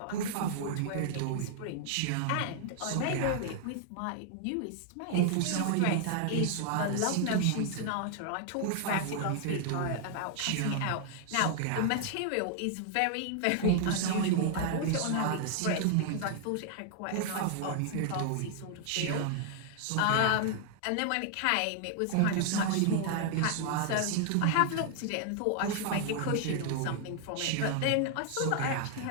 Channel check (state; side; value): different; both; correlation 0.00